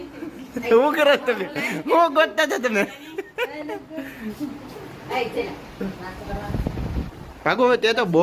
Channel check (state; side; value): identical; both; correlation 1.00